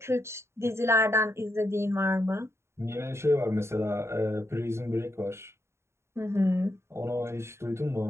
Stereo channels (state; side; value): late; left; 0.13 ms